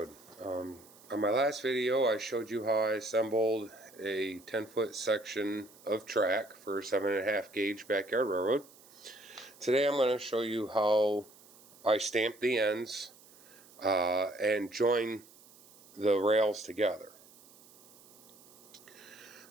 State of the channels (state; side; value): noise; right; hiss, 24 dB below the sound